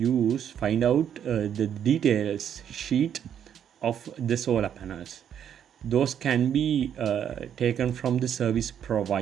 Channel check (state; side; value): quieter; left; 9.0 dB